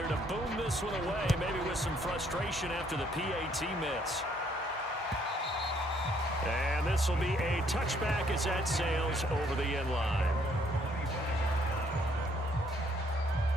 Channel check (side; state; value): both; normal; correlation 0.66